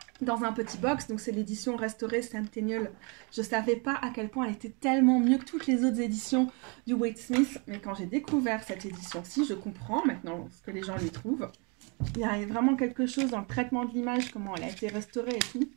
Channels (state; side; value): quieter; left; 33.1 dB